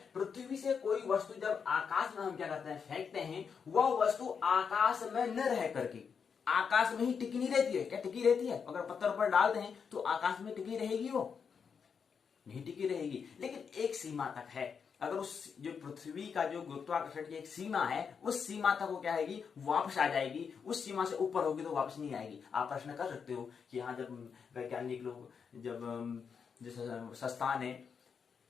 पृथ्वी से कोई वस्तु जब आकाश में हम क्या करते हैं, फेंकते हैं, वह वस्तु आकाश में न रह करके आकाश में ही टिकी नहीं रहती है। क्या टिकी रहती है? अगर पत्थर पर डालते हैं तो आकाश में टिकी रहेगी? वो नहीं टिकी रहेगी, लेकिन एक सीमा तक है। अगर उस जो पृथ्वी का जो गुरुत्वाकर्षण की एक सीमा है, उस सीमा तक वो क्या आएगी, वापस आ जाएगी। उस सीमा से ऊपर होगी तो वापस नहीं आएगी। आप प्रश्न कर सकते हो कि हाँ, जब वैज्ञानिक लोग जब जैसे संस्थान है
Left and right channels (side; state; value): right; quieter; 6.4 dB